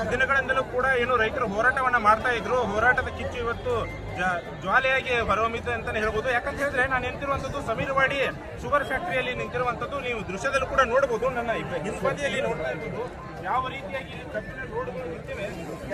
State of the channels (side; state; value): both; identical; correlation 1.00